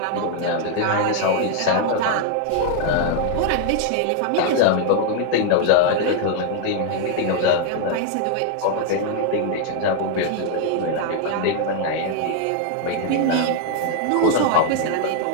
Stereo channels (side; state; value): both; different; correlation 0.00